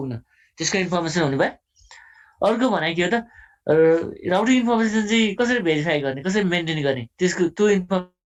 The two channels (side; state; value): both; identical; correlation 1.00